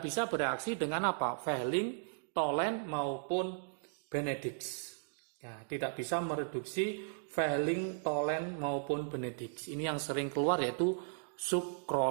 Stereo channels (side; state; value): left; silent; digital silence